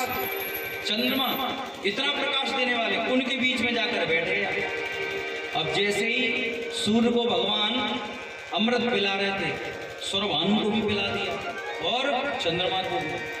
चंद्रमा इतना प्रकाश देने वाले, उनके बीच में जाकर बैठे। अब जैसे ही सूर्य को भगवान अमृत पिला रहे थे, स्वरभानु को भी पिला दिया और चंद्रमा को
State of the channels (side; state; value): both; identical; correlation 1.00